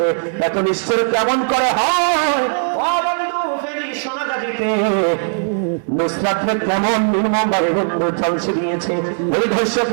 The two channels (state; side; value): silent; left; 61 dB below the other